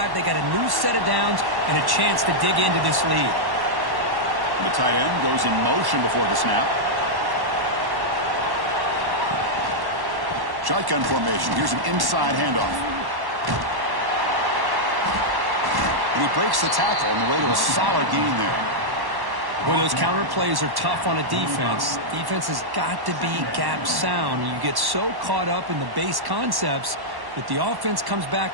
they got a new set of downs and a chance to dig into this lead. The tight end goes in motion before the snap. Shotgun formation. Here's an inside handoff. And he breaks the tackle on the way to a solid gain there. Well, those counter plays are tough on a defense. Defense has got to be gap sound. You get so caught up in the base concepts that the offense comes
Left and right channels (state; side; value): late; left; 1.1 ms